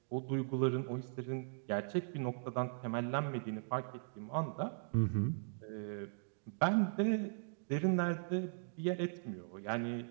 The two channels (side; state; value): left; silent; digital silence